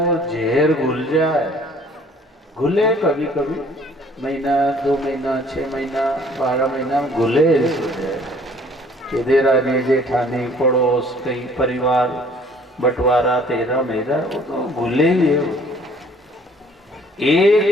जहर घुल जाए, घुले कभी कभी, महीना 2 महीना 6 महीना 12 महीना घुले कि देरानी जेठानी पड़ोस कई परिवार बंटवारा तेरा मेरा, वो तो घुले ही है।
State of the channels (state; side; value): normal; both; correlation 0.56